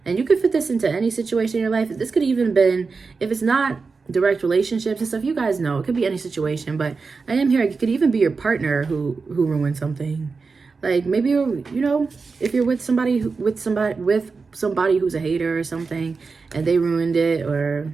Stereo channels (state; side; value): quieter; left; 4.6 dB